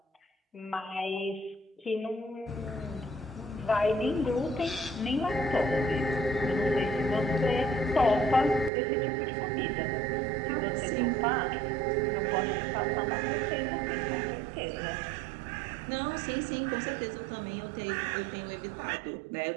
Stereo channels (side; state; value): left; drops out; at 8.7 s